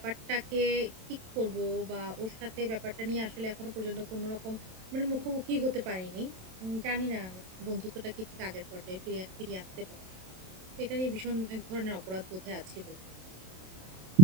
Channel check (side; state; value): left; late; 27 ms